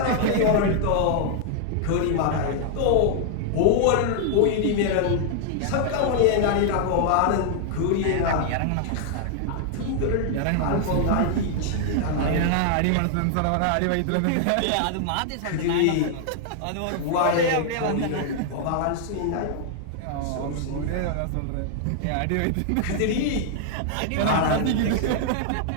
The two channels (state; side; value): different; both; correlation 0.00